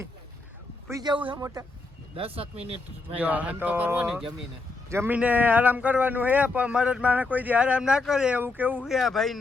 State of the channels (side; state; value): right; quieter; 3.5 dB